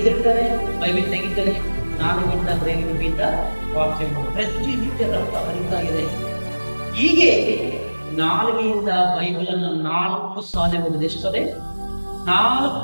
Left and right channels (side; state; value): both; inverted; correlation -1.00